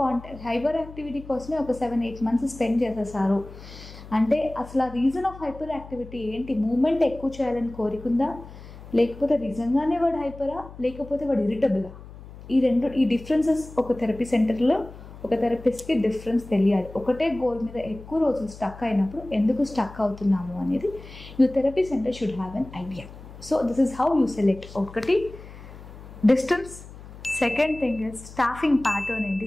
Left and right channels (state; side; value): noise; left; hum, 16 dB below the sound